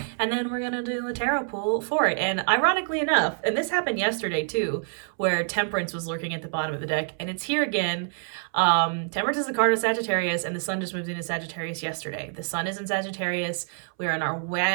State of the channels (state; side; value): silent; left; 61 dB below the other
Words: And then we're going to do a tarot pull for it. And ironically enough, and this happened yesterday too, where Temperance was lurking at the bottom of the deck, and it's here again. Temperance is the card of Sagittarius, and the sun just moved into Sagittarius yesterday. The sun is in Sagittarius. We are in our